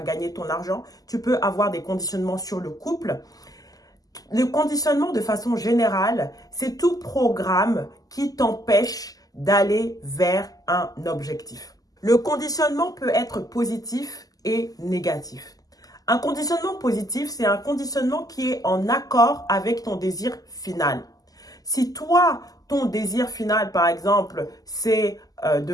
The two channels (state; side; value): late; right; 0.17 ms